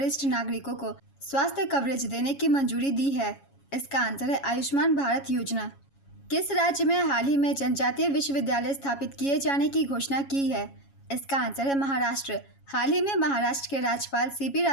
नागरिकों को स्वास्थ्य कवरेज देने की मंजूरी दी है? इसका आंसर है आयुष्मान भारत योजना। किस राज्य में हाल ही में जनजातीय विश्वविद्यालय स्थापित किए जाने की घोषणा की है? इसका आंसर है महाराष्ट्र। हाल ही में महाराष्ट्र के राज्यपाल सीपी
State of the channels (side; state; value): right; late; 7.2 ms